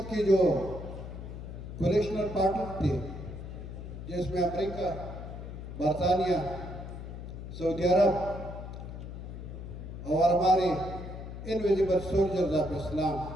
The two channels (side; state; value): left; noise; hum, 9 dB below the sound